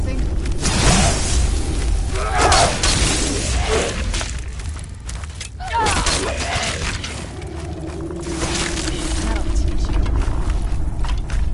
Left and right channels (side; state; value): both; identical; correlation 1.00